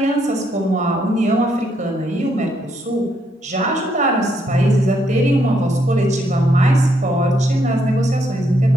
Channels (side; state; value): both; normal; correlation 0.74